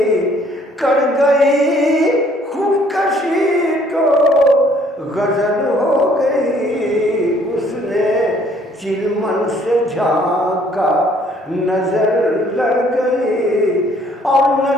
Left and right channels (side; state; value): both; normal; correlation 0.61